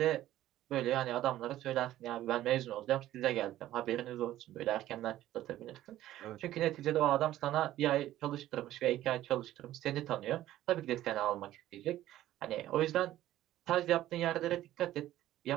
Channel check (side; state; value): left; quieter; 13.9 dB